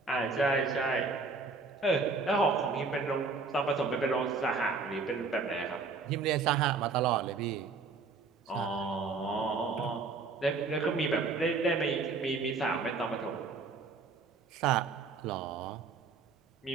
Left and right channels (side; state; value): left; quieter; 4.2 dB